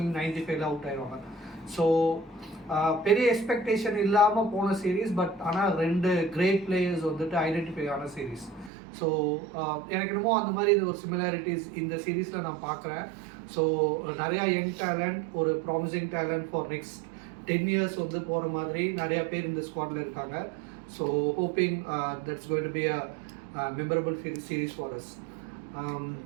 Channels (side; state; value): left; drops out; at 8.7 s